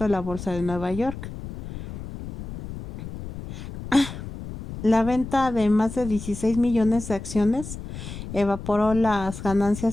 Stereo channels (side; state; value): left; noise; rumble, 10 dB below the sound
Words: la bolsa de Nueva York. La venta de más de 16 millones de acciones evaporó las